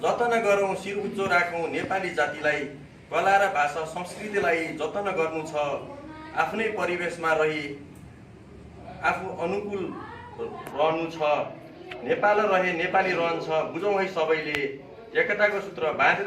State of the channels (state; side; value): identical; both; correlation 1.00